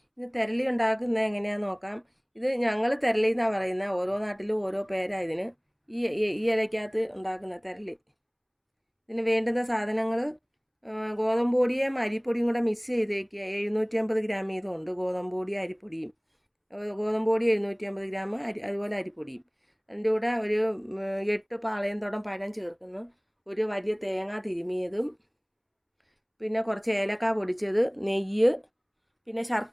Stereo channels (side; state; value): both; identical; correlation 1.00